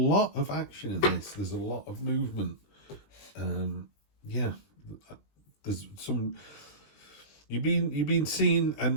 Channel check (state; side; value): late; right; 20 ms